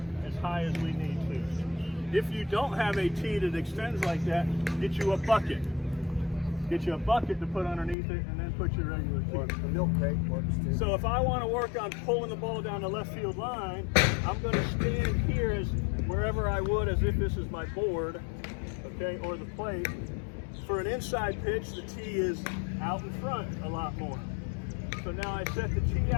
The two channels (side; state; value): right; drops out; at 8.0 s